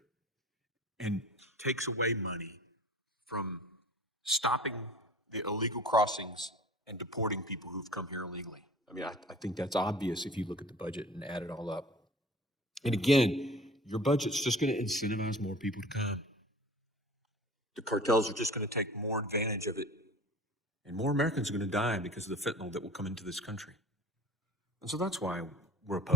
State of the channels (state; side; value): normal; both; correlation 0.42